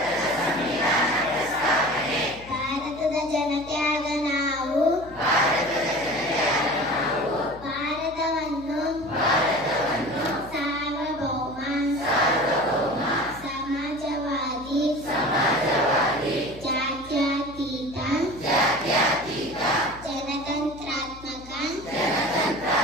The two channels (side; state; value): left; noise; hum, 19 dB below the sound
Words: ಭಾರತದ ಜನತೆಯಾದ ನಾವು ಭಾರತವನ್ನು ಸಾರ್ವಭೌಮ ಸಮಾಜವಾದಿ ಜಾತ್ಯತೀತ ಜನತಂತ್ರಾತ್ಮಕ